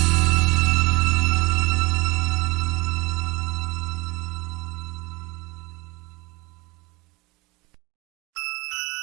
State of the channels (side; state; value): left; quieter; 22.4 dB